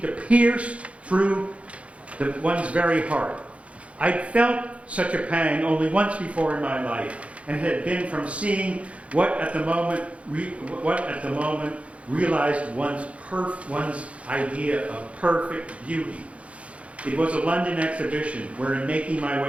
to pierce through one's very heart. I'd felt such a pang only once before in my life, and it had been from seeing what at the moment realized one's idea of perfect beauty. It was a London exhibition where, in making my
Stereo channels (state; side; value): late; left; 0.063 ms